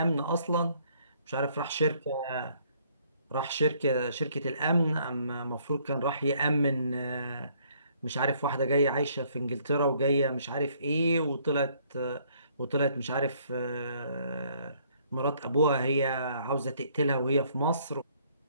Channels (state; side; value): inverted; both; correlation -0.64